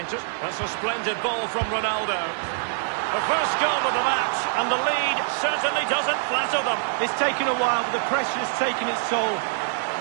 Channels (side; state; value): left; silent; digital silence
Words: That's a splendid ball from Ronaldo. The first goal of the match, and the lead certainly doesn't flatter them. It's taken a while, but the pressure has taken its toll.